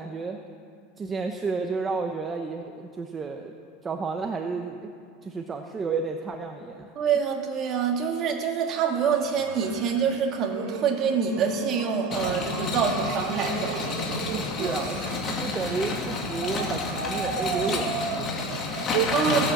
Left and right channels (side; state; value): left; quieter; 3.6 dB